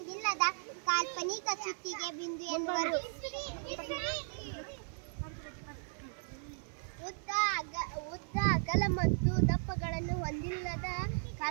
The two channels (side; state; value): left; silent; 54 dB below the other